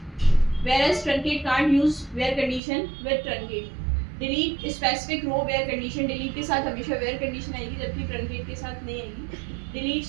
whereas truncate can't use where condition with truncate. Delete specific row where condition. Delete के साथ हमेशा where condition आएगी जबकि truncate के साथ नहीं आएगी. Delete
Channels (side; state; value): left; drops out; at 2.6 s